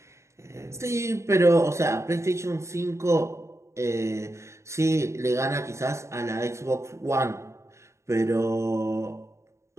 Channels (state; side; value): late; left; 0.14 ms